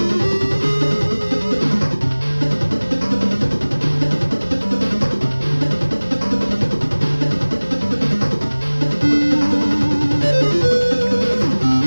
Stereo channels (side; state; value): both; inverted; correlation -1.00